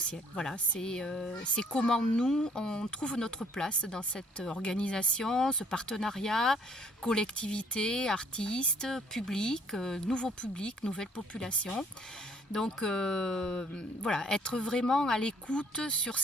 Voilà, c'est comment nous, on trouve notre place dans cette organisation, ce partenariat, collectivité, artistes, public, nouveau public, nouvelle population. Donc voilà, être vraiment à l'écoute sur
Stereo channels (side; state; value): both; normal; correlation 0.62